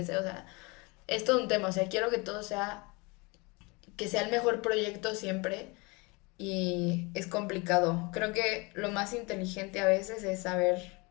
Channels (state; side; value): quieter; right; 27.3 dB